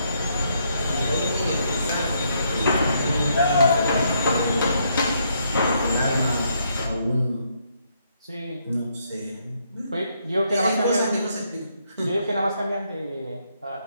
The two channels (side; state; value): both; inverted; correlation -0.74